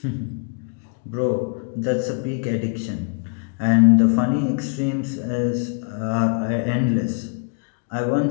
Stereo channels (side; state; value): right; quieter; 39.8 dB